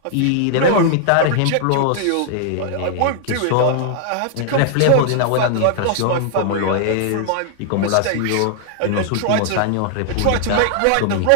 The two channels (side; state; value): both; different; correlation -0.01